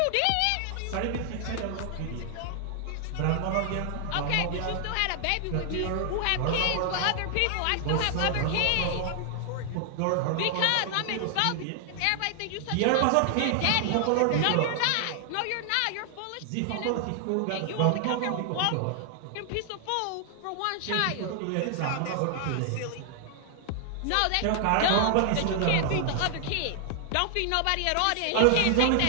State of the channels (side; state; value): both; different; correlation 0.00